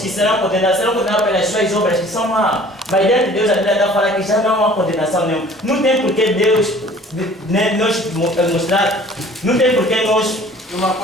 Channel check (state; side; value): normal; both; correlation 0.50